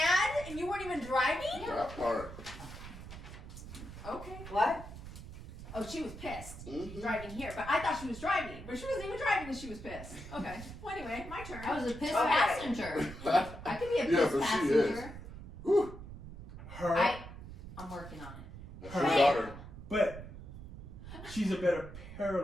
and you weren't even driving? That part. Okay. What? Oh, she was pissed. Mhm. Driving here. But I thought she was driving. But she wasn't even driving and she was pissed. Okay. Well, anyway, my turn. I was a pissed Okay. passenger. I could be a Yeah, pissed but she passenger. Whew. Her, I'm working on it. That's your Hey. daughter. but she's a better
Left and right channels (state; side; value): noise; right; rumble, 12 dB below the sound